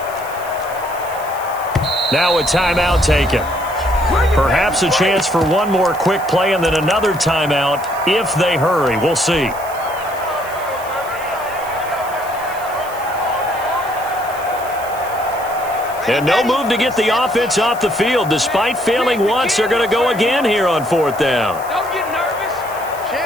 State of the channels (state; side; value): noise; right; hiss, 18 dB below the sound